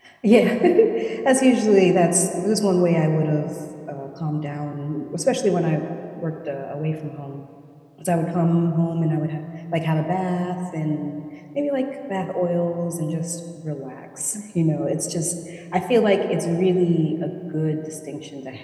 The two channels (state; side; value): identical; both; correlation 1.00